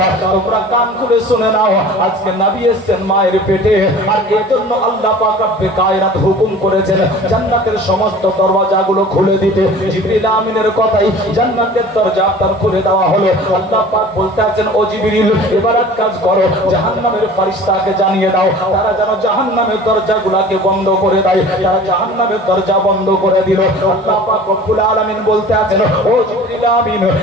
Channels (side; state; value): both; normal; correlation 0.43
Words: তোমরা কান খুলে শুনে নাও, আজকে নবী এসেছেন মায়ের পেটে, আর এজন্য আল্লাহ পাক রব্বে কায়নাত হুকুম করেছেন জান্নাতের সমস্ত দরওয়াজাগুলো খুলে দিতে। জিবরিল আমিনের কথাই জান্নাতের দরজা আপনার খুলে দেওয়া হলো। আল্লাহ পাক বলতে আছেন, ও জিবরিল এবার এক কাজ করো, জাহান্নামের ফেরেশতাকে জানিয়ে দাও, তারা যেন জাহান্নামের দরজাগুলোকে বন্ধ করে দেয়। তারা জাহান্নামের দরজা বন্ধ করে দিল। আল্লাহ পাক রব্বুল আলামিন বলতে আছেন, ও জিবরিল আমিন